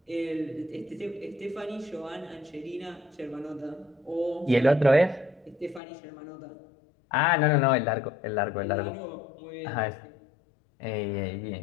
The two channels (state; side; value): drops out; right; at 5.8 s